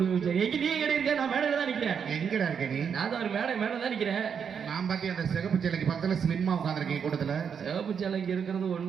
எங்க நீ எங்க இருக்க? நான் மேடையில தான் நிக்கிறேன். எங்கடா இருக்க நீ? நான் தான் ஒரு மேல தான் நிக்கிறேன். நான் பாத்தி அந்த சிகப்பு சேலைக்கு பக்கத்துல ஸ்லிம்மா உட்காந்துருக்கேன் கூட்டத்துல. சிகப்பு சேலைக்கு இருக்கிறது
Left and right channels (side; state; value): left; quieter; 7.1 dB